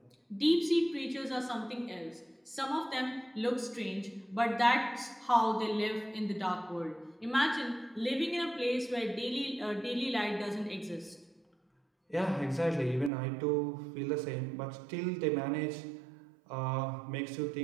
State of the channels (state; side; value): drops out; left; at 13.1 s